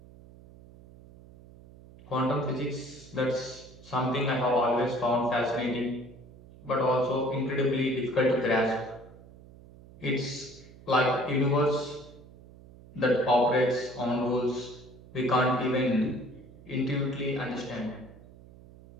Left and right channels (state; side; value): noise; right; hum, 21 dB below the sound